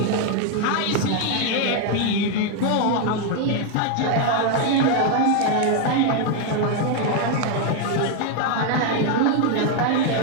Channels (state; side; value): different; both; correlation 0.01